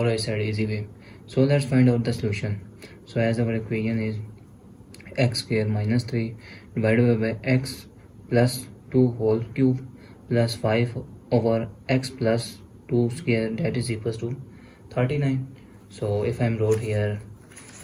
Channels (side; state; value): both; identical; correlation 1.00